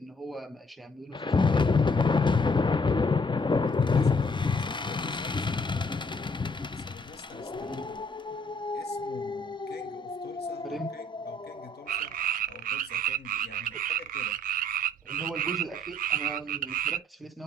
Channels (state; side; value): normal; both; correlation 0.65